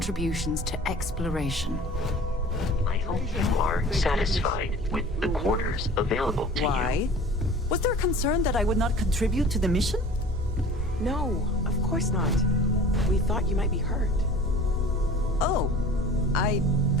to exploration. I hope you are satisfied with the quarters available to Why? Was there concern that I would not contribute to the mission? No, of course not. We thought you might be hurt. Oh,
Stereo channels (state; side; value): normal; both; correlation 0.43